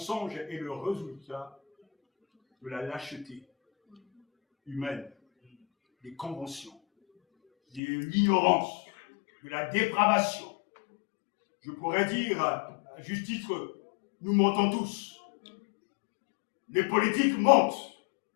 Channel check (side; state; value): right; drops out; at 7.8 s